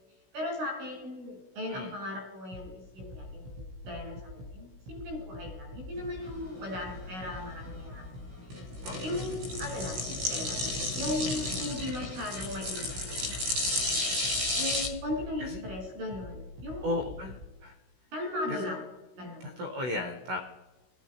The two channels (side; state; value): left; late; 16 ms